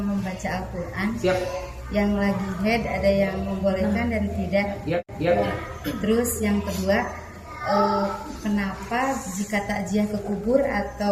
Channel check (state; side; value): identical; both; correlation 1.00